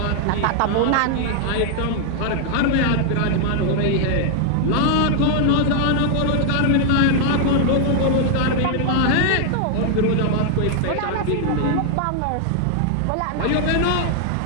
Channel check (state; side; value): different; both; correlation 0.00